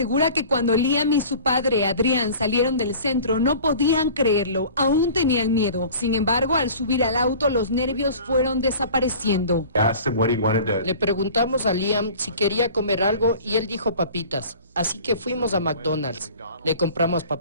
que cuando Liam y su padre Adrián salieron del centro no podían creerlo, aún tenían miedo. Sin embargo, al subir al auto los nervios fueron desapareciendo. Le preguntamos a Liam si quería comer algo y él dijo papitas. Así que fuimos a McDonald's. Le compramos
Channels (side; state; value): both; inverted; correlation -0.43